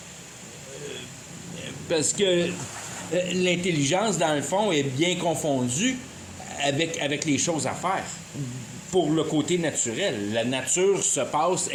Parce que l'intelligence, dans le fond, est bien confondue avec les choses à faire. Pour le côté naturel. La nature se passe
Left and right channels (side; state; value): both; identical; correlation 1.00